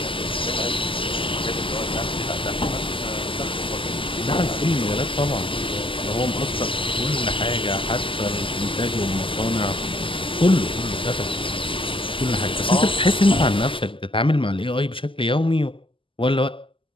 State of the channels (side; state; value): right; late; 0.25 ms